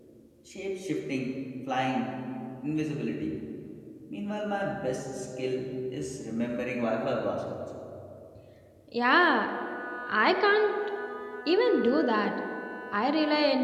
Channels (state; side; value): identical; both; correlation 1.00